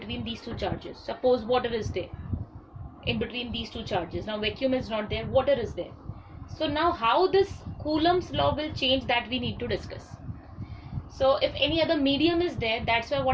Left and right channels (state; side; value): identical; both; correlation 1.00